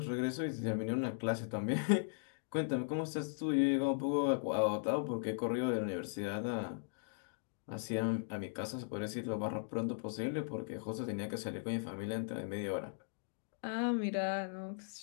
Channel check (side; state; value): right; silent; digital silence